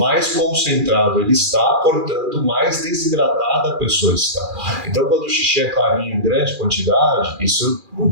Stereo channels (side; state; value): left; late; 2.4 ms